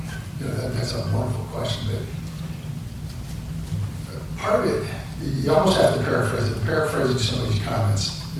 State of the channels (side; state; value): both; identical; correlation 1.00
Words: You know, that's a wonderful question, but part of it, you almost have to paraphrase it. Paraphrasing some of these comments